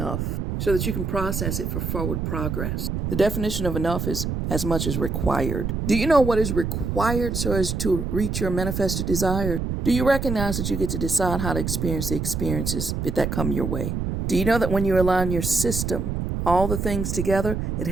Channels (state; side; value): noise; right; rumble, 2 dB below the sound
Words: so that you can process it for forward progress. The definition of enough is as much as required. Do you know what is required so as to reach your manifested desires? Do you recognize that you get to decide how to experience the experiences that come your way? Do you know that when you align your system, all the things together, it